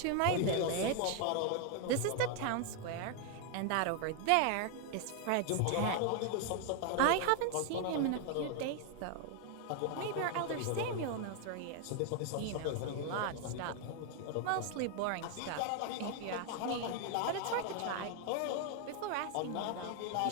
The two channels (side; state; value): both; different; correlation 0.00